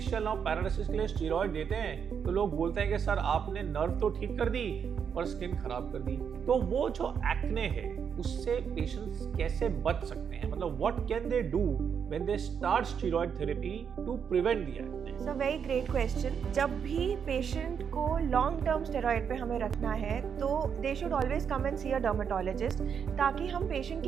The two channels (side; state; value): left; quieter; 7.2 dB